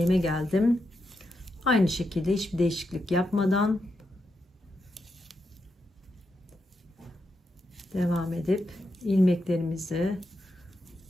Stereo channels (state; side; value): normal; both; correlation 0.85